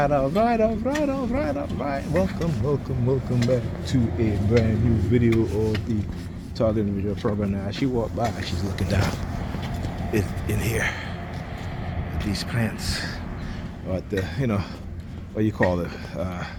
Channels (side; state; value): both; identical; correlation 1.00